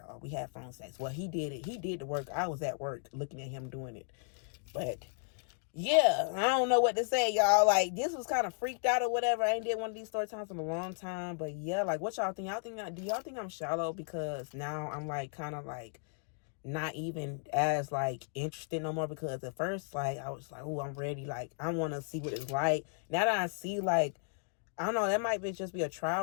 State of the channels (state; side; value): silent; right; 55 dB below the other